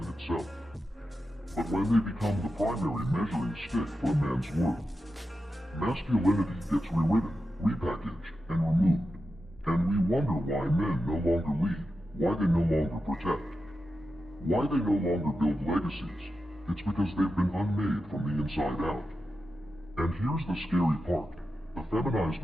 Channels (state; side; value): normal; both; correlation 0.90